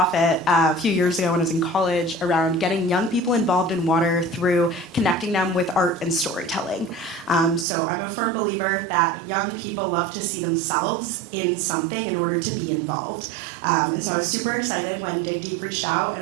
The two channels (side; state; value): left; drops out; at 7.7 s